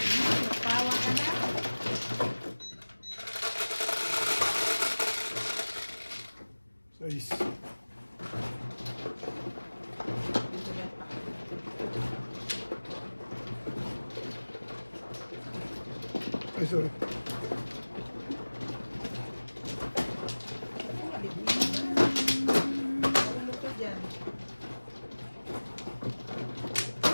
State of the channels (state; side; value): inverted; both; correlation -1.00